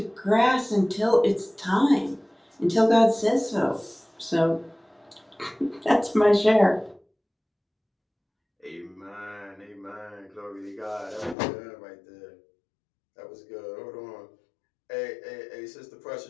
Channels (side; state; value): right; drops out; at 11.4 s